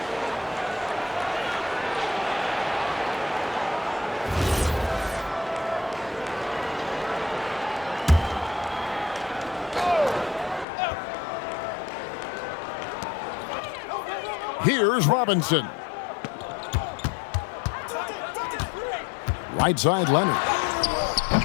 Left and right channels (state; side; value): drops out; right; at 10.7 s